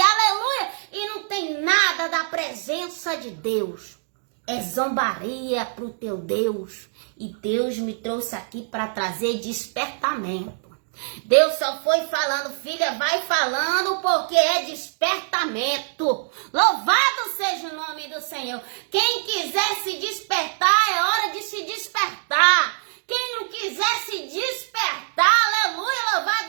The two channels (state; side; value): silent; left; digital silence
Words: aleluia, e não tem nada da presença de Deus. É zombaria para o teu Deus. E Deus me trouxe aqui para trazer despertamento. Deus só foi falando, filha, vai falando porque é despertamento. Louvado seja o nome do Senhor. Quem quiser se despertar, é hora de se despertar. Quem não quiser se despertar, aleluia,